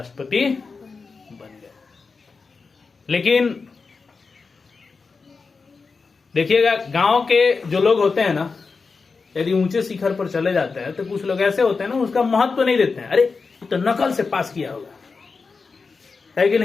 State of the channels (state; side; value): quieter; right; 4.6 dB